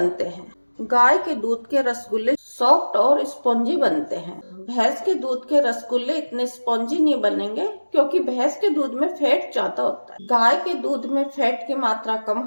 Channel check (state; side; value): inverted; both; correlation -1.00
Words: हैं। गाय के दूध के रसगुल्ले सॉफ्ट और स्पॉन्जी बनते हैं। भैंस के दूध के रसगुल्ले इतने स्पॉन्जी नहीं बनेंगे क्योंकि भैंस के दूध में फैट ज्यादा होता है। गाय के दूध में फैट की मात्रा कम